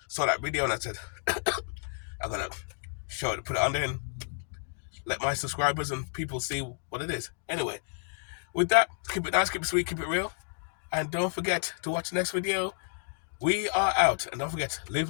saw that video and I said I'm gonna show it, put it on there, and let my subscribers and people see what it is. Anyway, with that, keep it nice, keep it sweet, keep it real, and don't forget to watch the next video. We are out, and don't forget, live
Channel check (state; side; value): silent; right; digital silence